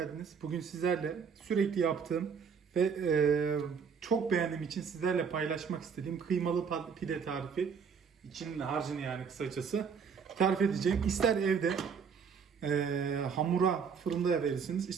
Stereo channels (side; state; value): left; quieter; 6.3 dB